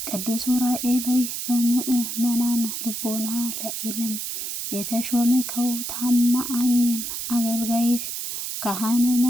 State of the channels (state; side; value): noise; right; hiss, 5 dB below the sound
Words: ቅዱስ ዑራኤል ሆይ በምእመናን ልቦና ለዓለም የተሾመከው ታማኝም አገልጋይህ ካህን